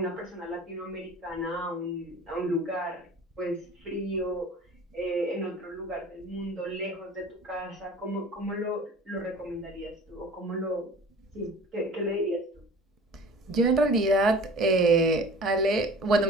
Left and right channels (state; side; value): normal; both; correlation 0.43